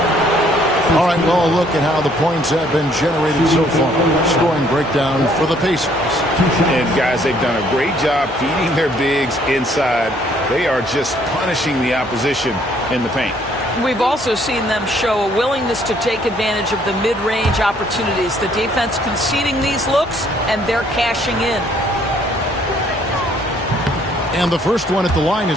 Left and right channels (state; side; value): normal; both; correlation 0.64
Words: All right, well, look at how the points have been generated so far. Scoring breakdown for the Pacers. And, guys, they've done a great job feeding their bigs inside. They are just punishing the opposition in the paint. We've also seen them show a willingness to take advantage of the mid-range opportunities. The defense conceding these looks, and they're cashing in. And the first one at the line